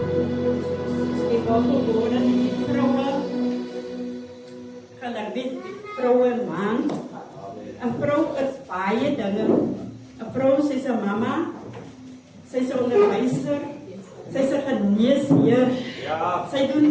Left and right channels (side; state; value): both; identical; correlation 1.00